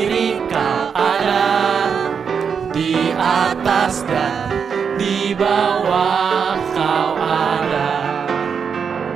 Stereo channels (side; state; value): left; quieter; 6.5 dB